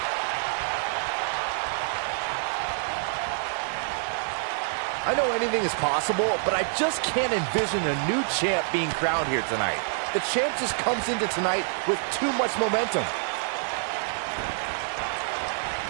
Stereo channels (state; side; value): silent; left; digital silence